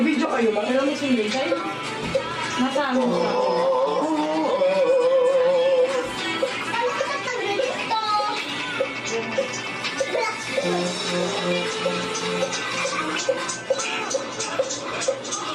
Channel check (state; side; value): identical; both; correlation 1.00